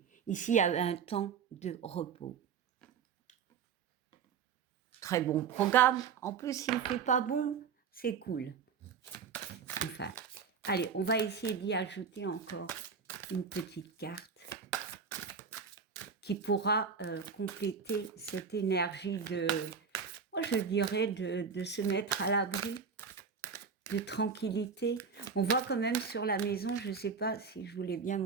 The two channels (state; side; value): quieter; left; 6.0 dB